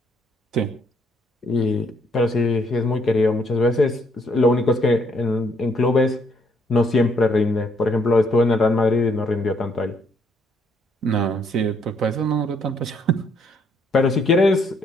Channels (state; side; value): normal; both; correlation 0.70